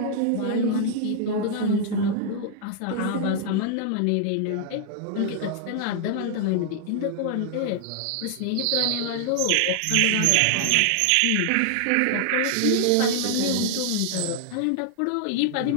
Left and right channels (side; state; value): both; different; correlation -0.01